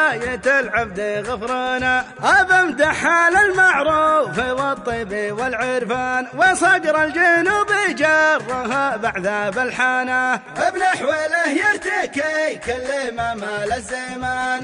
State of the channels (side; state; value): both; identical; correlation 1.00